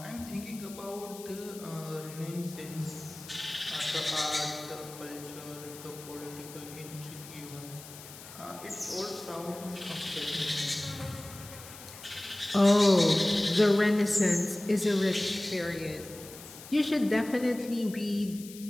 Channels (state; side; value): noise; left; hiss, 16 dB below the sound